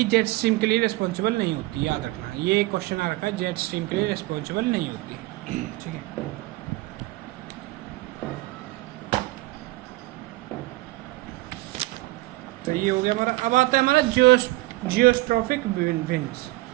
जेट स्ट्रीम के लिए रिस्पॉन्सिबल नहीं होती, याद रखना। ये क्वेश्चन आ रखा है, जेट स्ट्रीम के लिए रिस्पॉन्सिबल नहीं होती, ठीक है। तो ये हो गया हमारा। अब आता है हमारा जियोस्ट्रॉफिक विंड्स,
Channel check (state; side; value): quieter; left; 20.0 dB